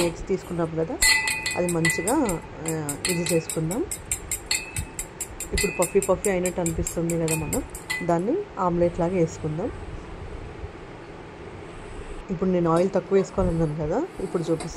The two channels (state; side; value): identical; both; correlation 1.00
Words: eggs తీసుకున్నాం కదా, అది మంచిగా ఇది చేసుకుందాం. ఇప్పుడు పఫీ అయినట్టు అనిపిస్తుంది కదా, మనం దాన్ని ఆమ్లెట్ లాగా వేసుకుందాం. ఇప్పుడు నేను ఆయిల్ తక్కువ వేసుకోవాలన్నాను కదా, ఇప్పుడు